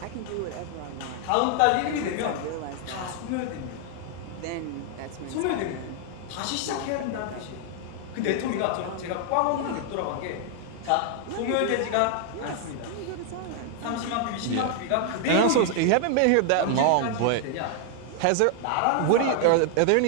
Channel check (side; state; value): both; different; correlation 0.00